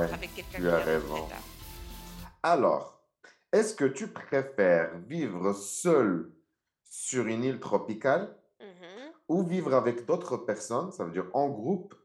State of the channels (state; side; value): identical; both; correlation 1.00